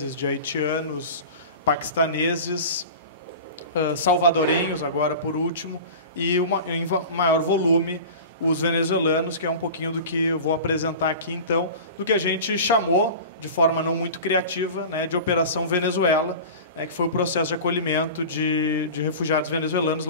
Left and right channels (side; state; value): both; inverted; correlation -0.34